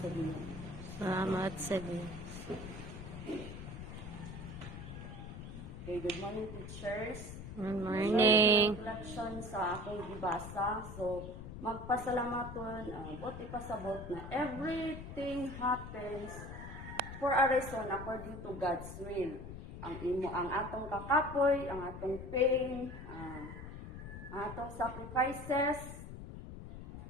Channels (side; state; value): left; noise; rumble, 10 dB below the sound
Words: Ginoo. Salamat sa Diyos. Okay, good morning teachers. Good morning. Reflection sa akong gibasa. So, magpasalamaton, buti pasabot na everything happens for a reason according to God's will. Ang atong kakapoy, ang atong pain, ang atong sacrifices,